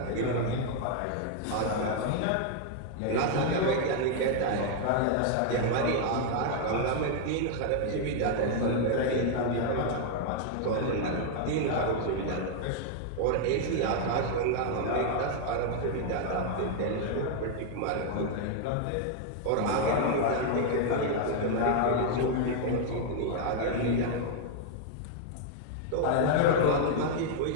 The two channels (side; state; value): both; different; correlation 0.00